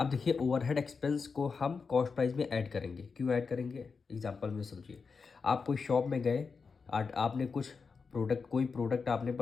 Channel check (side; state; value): right; quieter; 5.1 dB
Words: देखिए ओवरहेड एक्सपेंस को हम कॉस्ट प्राइस में ऐड करेंगे, क्यों ऐड करेंगे एग्जांपल में समझिए, आप कोई शॉप में गए, आपने कुछ कोई प्रोडक्ट आपने